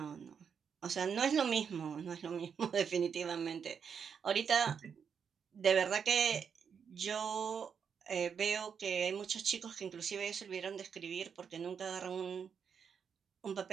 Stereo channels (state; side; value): quieter; left; 6.9 dB